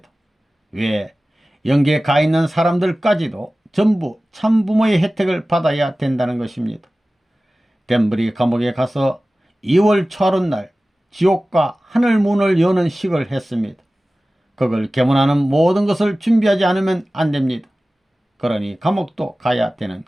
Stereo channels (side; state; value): both; normal; correlation 0.96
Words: 왜? 영계에 가 있는 사람들까지도 전부 참부모의 혜택을 받아야 된다는 것입니다. 덴브리 감옥에 가서 2월 초하룻날 지옥과 하늘문을 여는 식을 했습니다. 그걸 개문하는 모든 것을 준비하지 않으면 안 됩니다. 그러니 감옥도 가야 되는